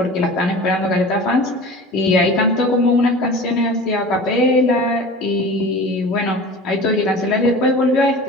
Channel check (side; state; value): both; normal; correlation 0.38